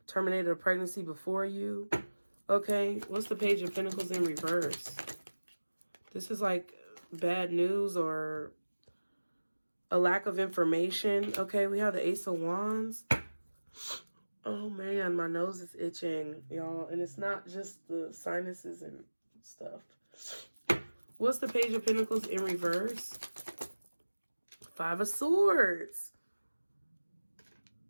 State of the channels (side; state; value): both; inverted; correlation -1.00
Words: terminated a pregnancy before you. Okay, what's the Page of Pentacles in reverse? This is like bad news or a lack of information. Okay, we have the Ace of Wands. Oh man, my nose is itching, y'all. And it's not just the sinuses and stuff. What's the Page of Pentacles in reverse? Five of Swords.